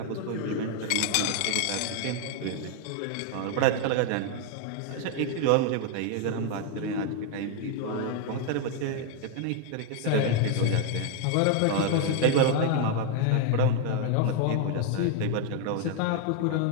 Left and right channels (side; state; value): both; different; correlation 0.00